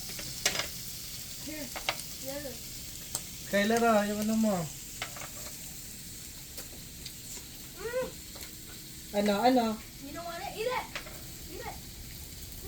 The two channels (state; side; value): identical; both; correlation 1.00